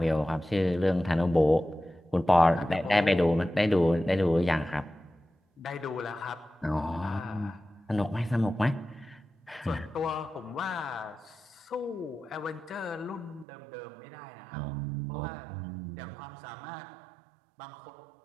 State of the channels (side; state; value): left; drops out; at 13.5 s